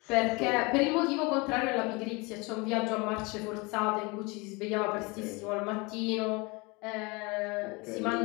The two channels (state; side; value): quieter; right; 26.8 dB